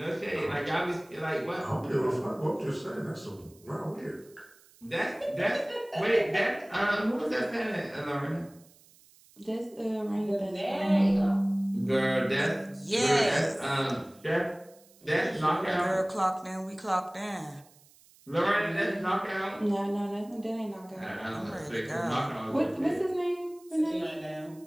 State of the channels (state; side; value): noise; right; hiss, 27 dB below the sound